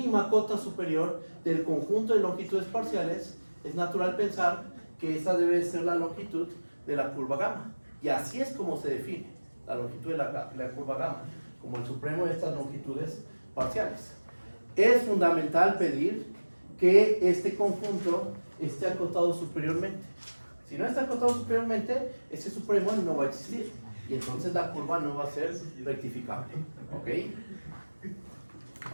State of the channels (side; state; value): both; inverted; correlation -1.00